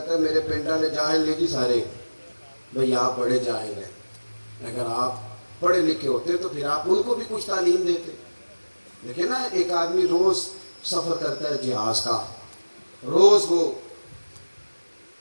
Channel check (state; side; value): inverted; both; correlation -1.00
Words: ہے میرے پنڈ والے جاہل نہیں جی سارے. بھئی آپ بڑے جاہل ہیں. اگر آپ پڑھے لکھے ہوتے تو پھر آپ ان کو بھی کچھ تعلیم دیتے. دیکھیں نا, ایک آدمی روز سفر کرتا ہے جہاز کا, روز وہ